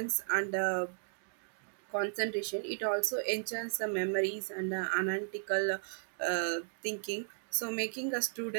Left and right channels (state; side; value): silent; left; digital silence